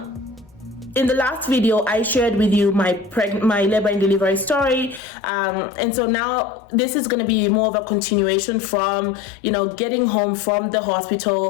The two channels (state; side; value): drops out; right; at 5.0 s